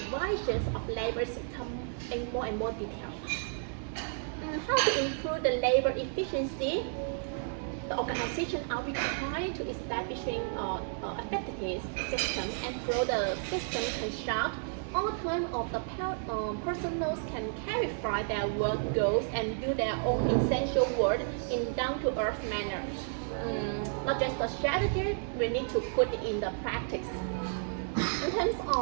of labor system in more and more detail. How to improve the labor efficiency? The organization are required to establishing effective system, and through the system construct, all time of the personnel can clarify their work goals and do their own essential work in down-to-earth manner. Not just the strategy, we need to put it in the practice. In terms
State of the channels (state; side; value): silent; left; digital silence